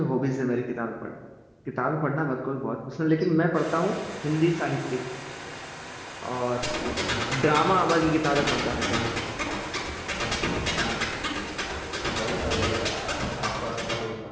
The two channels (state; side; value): identical; both; correlation 1.00